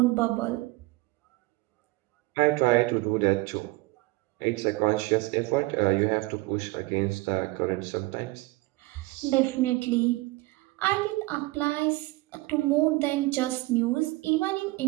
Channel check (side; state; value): left; quieter; 21.5 dB